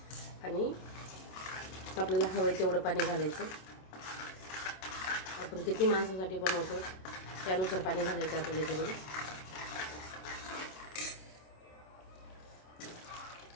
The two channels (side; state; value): right; late; 27 ms